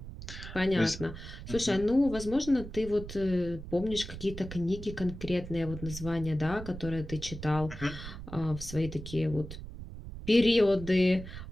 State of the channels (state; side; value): noise; right; rumble, 11 dB below the sound